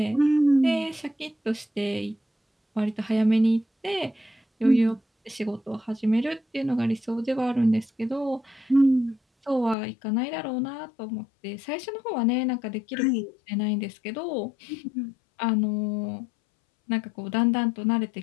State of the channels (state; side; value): drops out; right; at 9.8 s